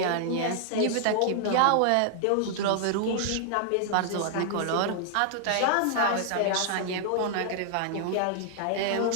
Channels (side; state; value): both; different; correlation 0.00